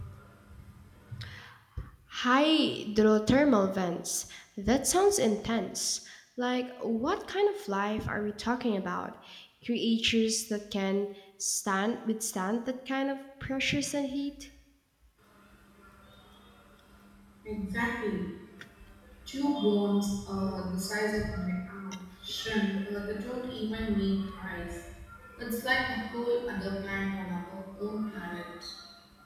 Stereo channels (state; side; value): identical; both; correlation 1.00